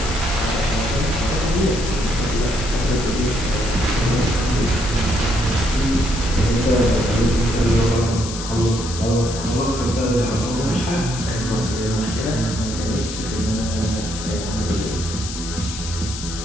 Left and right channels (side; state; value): left; noise; hiss, 9 dB below the sound